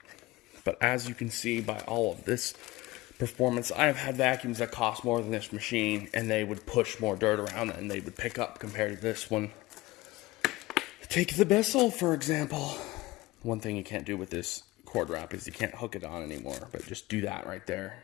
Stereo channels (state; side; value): quieter; right; 19.7 dB